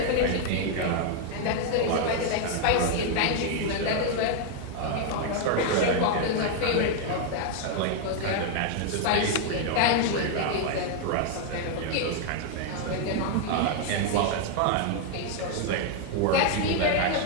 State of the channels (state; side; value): different; both; correlation 0.00